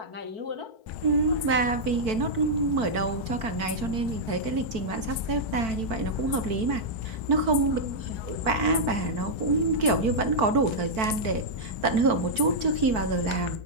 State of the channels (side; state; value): left; late; 4.5 ms